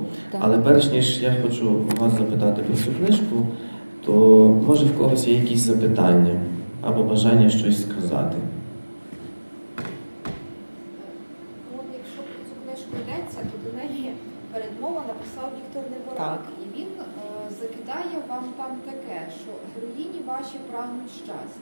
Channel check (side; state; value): both; inverted; correlation -1.00